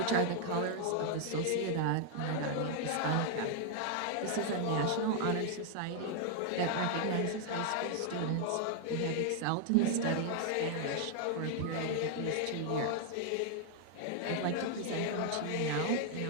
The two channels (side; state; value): both; different; correlation 0.00